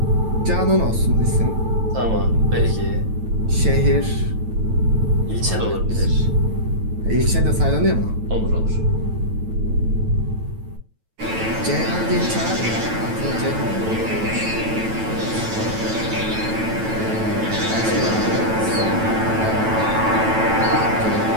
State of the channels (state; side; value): late; left; 9.1 ms